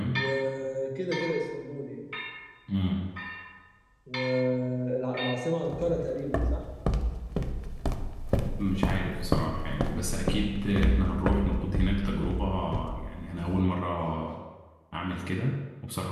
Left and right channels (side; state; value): both; identical; correlation 1.00